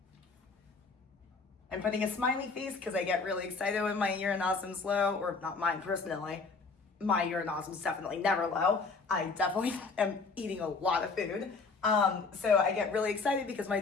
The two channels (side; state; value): right; quieter; 4.3 dB